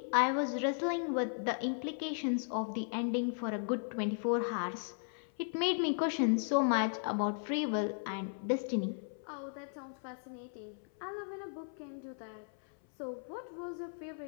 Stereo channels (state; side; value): silent; right; 54 dB below the other